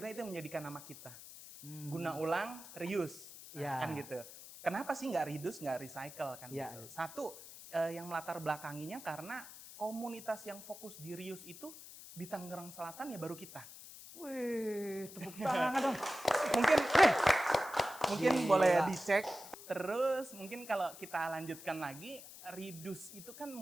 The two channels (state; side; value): noise; left; hiss, 15 dB below the sound